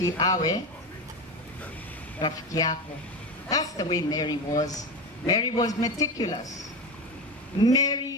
awe rafiki yako. That's the way Mary was. Mary was meticulous.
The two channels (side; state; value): both; normal; correlation 0.21